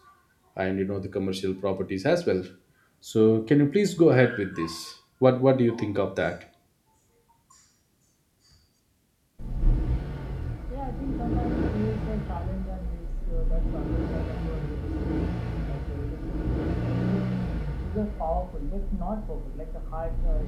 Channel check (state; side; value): identical; both; correlation 1.00